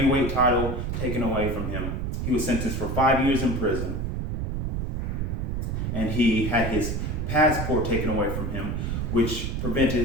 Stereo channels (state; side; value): noise; right; rumble, 1 dB below the sound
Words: title taken away from him. He was sentenced for 5 years in prison. And he had his passport taken away from him, which